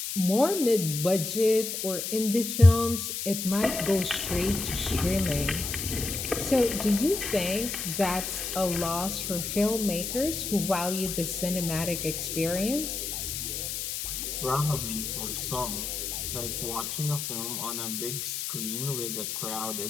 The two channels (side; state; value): left; noise; hiss, 4 dB below the sound